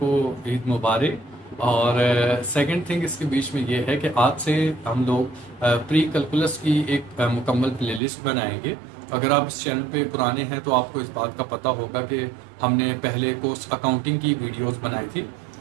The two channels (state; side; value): drops out; left; at 8.0 s